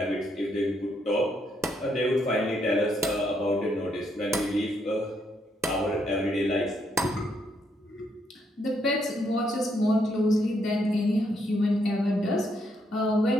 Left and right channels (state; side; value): normal; both; correlation 0.75